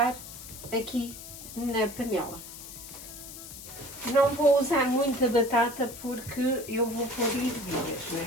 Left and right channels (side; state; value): left; noise; hiss, 13 dB below the sound